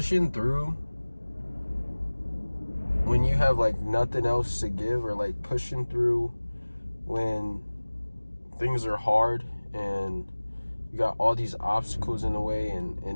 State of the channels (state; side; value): inverted; both; correlation -1.00